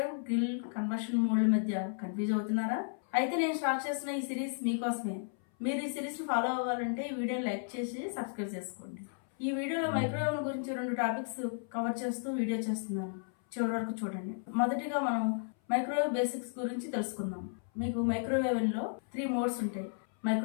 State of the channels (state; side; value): silent; right; 55 dB below the other